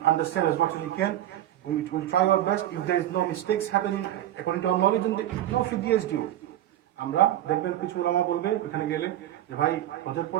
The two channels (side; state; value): left; quieter; 12.9 dB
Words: understand, as much as we can, we will try our best. If there is no mistakes happening according to our knowledge, then no fidyah is due. আমরা দেখবেন কিছু ওলামা বলবে ওখানে গেলে যে ভাই হজের